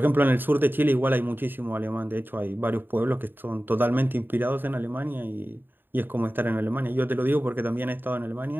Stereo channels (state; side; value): late; left; 0.095 ms